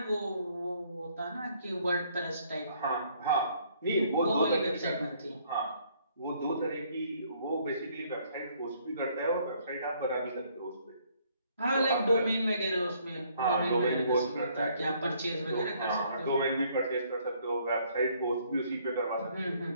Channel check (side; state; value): both; inverted; correlation -0.65